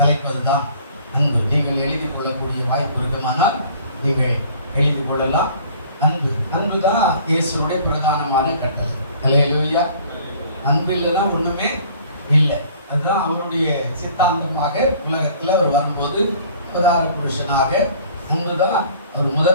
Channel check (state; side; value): inverted; both; correlation -0.52